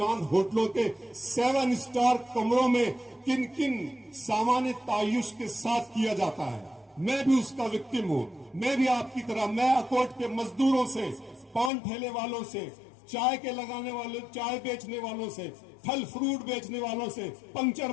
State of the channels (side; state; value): right; drops out; at 11.7 s